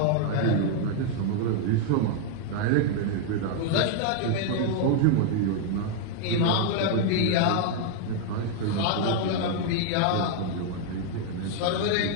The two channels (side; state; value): both; different; correlation 0.00